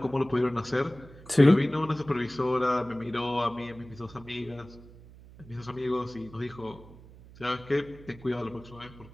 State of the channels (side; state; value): right; noise; hum, 20 dB below the sound